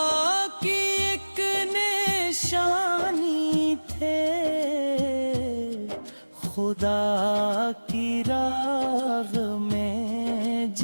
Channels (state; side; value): inverted; both; correlation -1.00